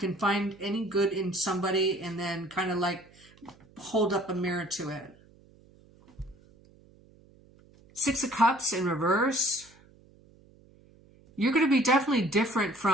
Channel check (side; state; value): right; noise; hum, 27 dB below the sound